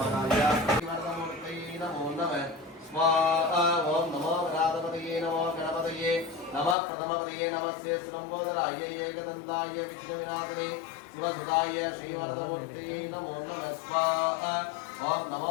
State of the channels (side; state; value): right; drops out; at 6.8 s